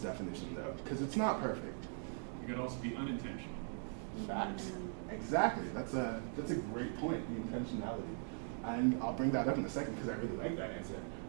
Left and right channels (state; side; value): silent; left; 51 dB below the other